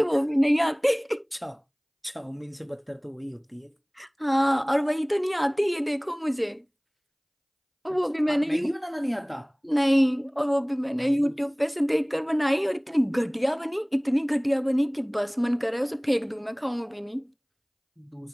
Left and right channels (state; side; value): identical; both; correlation 1.00